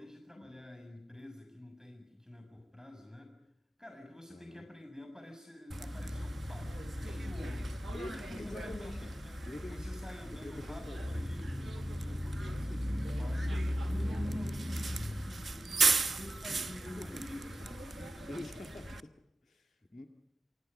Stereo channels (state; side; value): normal; both; correlation 0.93